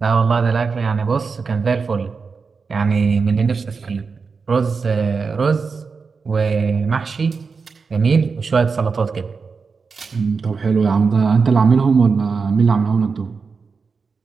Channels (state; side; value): quieter; left; 5.0 dB